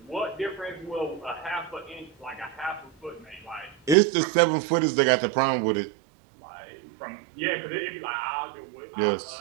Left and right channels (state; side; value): drops out; left; at 4.0 s